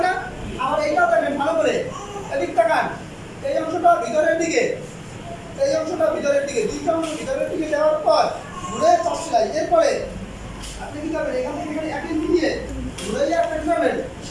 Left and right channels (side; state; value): both; identical; correlation 1.00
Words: না? আবার এইটাও দেখেন ভালো করে, এদিক তাকান, এই অংশটা ভিতরের দিকে, দুইটা অংশ ভিতরের দিকে দেওয়ার পর ঘুরে চাপ সেলাই। এরপরে আপনি কি করবেন? এখান থেকে এক ইঞ্চি দিয়ে ঘুরে একটা কি করবেন?